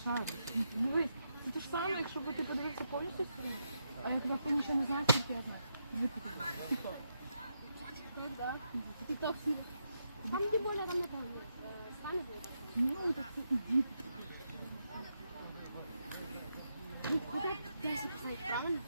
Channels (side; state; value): both; inverted; correlation -0.82